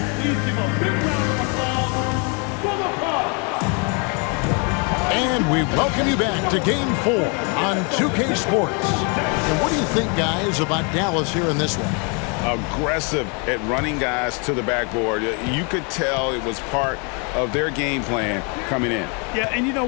And we welcome you back to Game 4 on 2K Sports. And what do you think, guys, about Dallas here in this one? Aggressive at running guys to the backboard. You could tell it was part of their game plan coming in. Yeah, and you know,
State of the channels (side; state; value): right; quieter; 34.7 dB